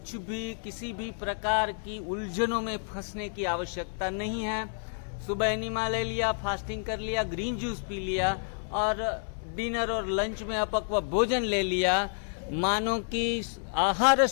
भी किसी भी प्रकार की उलझनों में फंसने की आवश्यकता नहीं है। सुबह एनिमा ले लिया, फास्टिंग कर लिया, ग्रीन जूस पी लिया और डिनर और लंच में अपक्व भोजन ले लिया, मानो कि आहार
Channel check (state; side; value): silent; right; 58 dB below the other